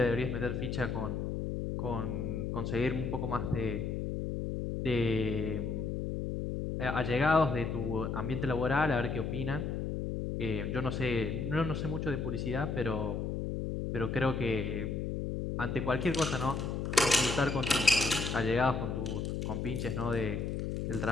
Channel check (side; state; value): left; noise; hum, 2 dB below the sound